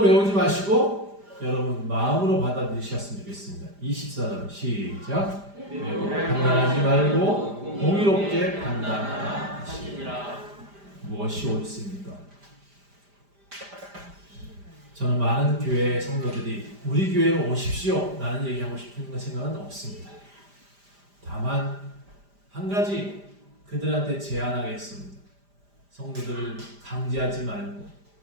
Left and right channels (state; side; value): late; left; 5.0 ms